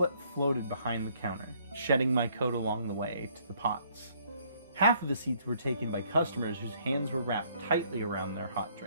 floated behind the counter, shedding my coat along the way to the pots. Half of the seats were taken by customers whose hands were wrapped tightly around their hot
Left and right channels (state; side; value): inverted; both; correlation -0.65